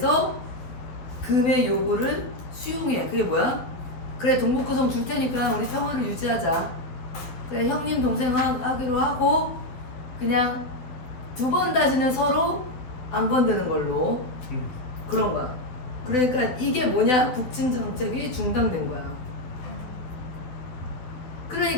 금의 요구를 수용해. 그게 뭐야? 그래 동북구성 줄 테니까 우리 평화를 유지하자. 그래 형님 동생 하기로 하고 그냥 두 번 다시는 서로 안 건드는 걸로. 그런 거야. 그러니까 이게 뭐냐? 북진 정책이 중단된 거야.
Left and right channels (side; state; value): right; late; 12 ms